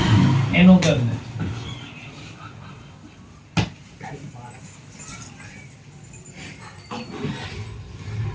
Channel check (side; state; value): both; identical; correlation 1.00